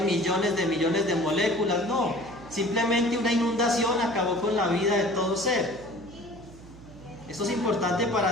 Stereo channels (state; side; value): noise; right; hum, 19 dB below the sound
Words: millones de moléculas, no. Simplemente una inundación acabó con la vida de todo ser. Esto es importante